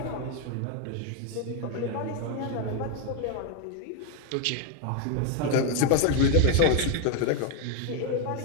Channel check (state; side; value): different; both; correlation 0.01